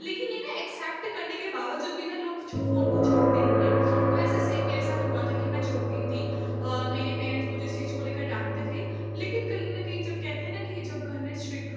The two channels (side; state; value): both; identical; correlation 1.00